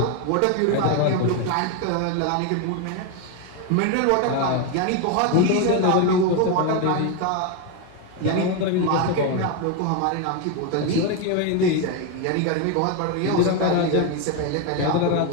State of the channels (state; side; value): different; both; correlation 0.02